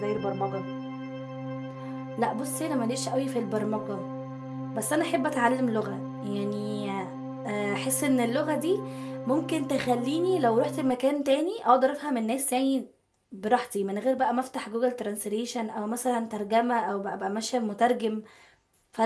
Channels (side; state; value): both; identical; correlation 1.00